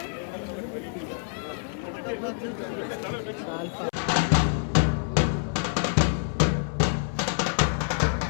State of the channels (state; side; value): silent; right; 60 dB below the other